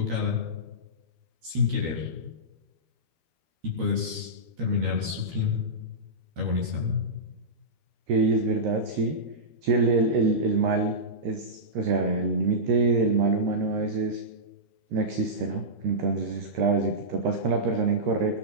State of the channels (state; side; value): late; left; 13 ms